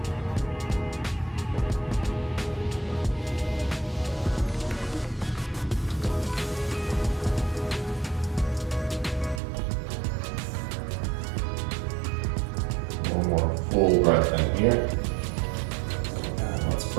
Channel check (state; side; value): drops out; left; at 9.4 s